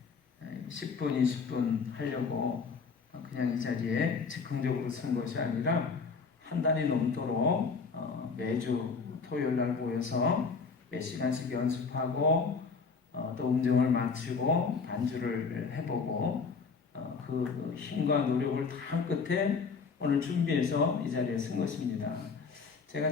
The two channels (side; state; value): right; quieter; 5.0 dB